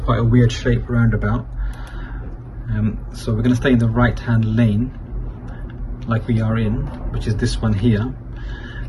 a weird shape roundabout. So we're going to stay in the right hand lane like we are in, which is this one here.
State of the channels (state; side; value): identical; both; correlation 1.00